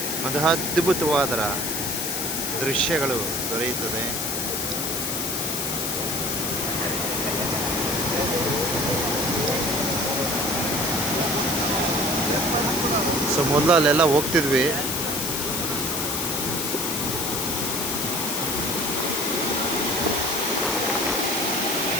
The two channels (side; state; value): left; noise; hiss, 1 dB below the sound